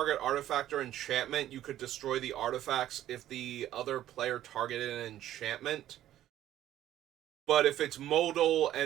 artifact or enchantment, you could destroy the artifacts if the other player targeted an enchantment. But if it's modal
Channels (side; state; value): left; quieter; 12.7 dB